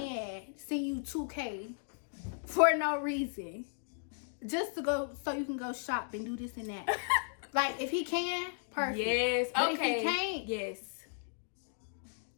send you $2K for no reason? Just to go, so you can go shop and do this and that. Like, if he can, perfect. Yes, but okay. If he can't, yes.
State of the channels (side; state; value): right; silent; digital silence